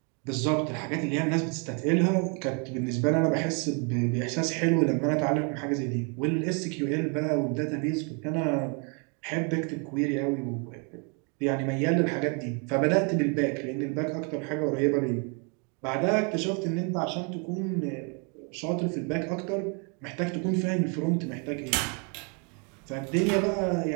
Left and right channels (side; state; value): left; quieter; 36.0 dB